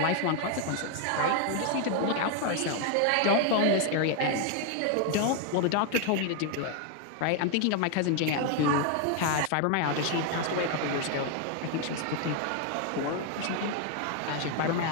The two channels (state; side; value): different; both; correlation 0.00